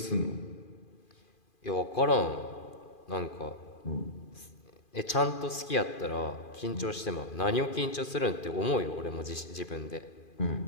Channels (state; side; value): late; right; 2.4 ms